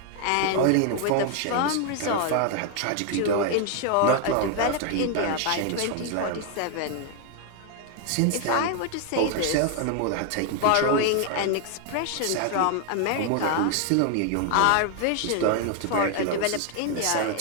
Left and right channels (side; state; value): both; different; correlation 0.00